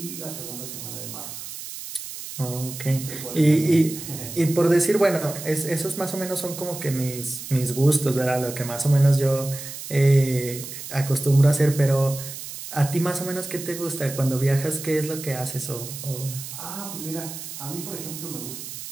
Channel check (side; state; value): right; noise; hiss, 10 dB below the sound